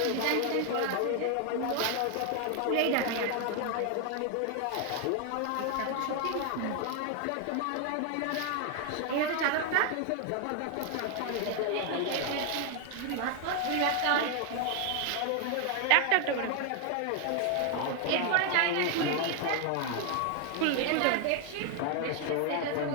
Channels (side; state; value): both; different; correlation 0.00